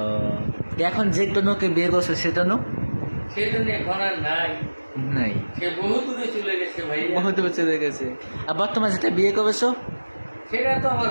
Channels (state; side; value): inverted; both; correlation -1.00